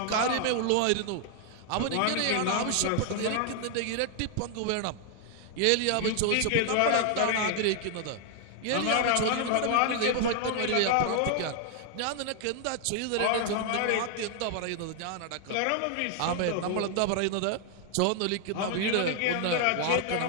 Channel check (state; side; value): different; both; correlation 0.00